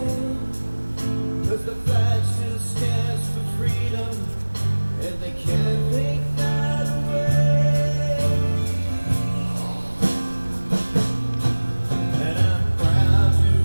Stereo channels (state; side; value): inverted; both; correlation -1.00